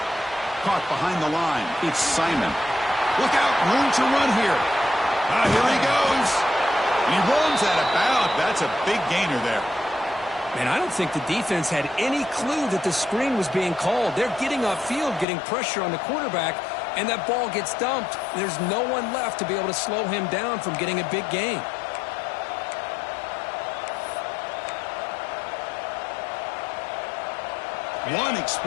Caught behind the line. It's Simon. Look out, room to run here. Here he goes. He runs out of bounds. That's a big gainer there. Man, I don't think the defense had any clue that the screen was being called. They're getting upfield, getting pressure on the quarterback, and that ball gets dumped. There's no one left to be able to slow him down from getting a big gain. One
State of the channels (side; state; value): right; drops out; at 15.2 s